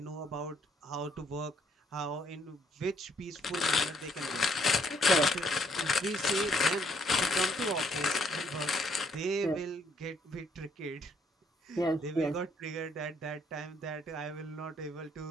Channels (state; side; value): normal; both; correlation 0.68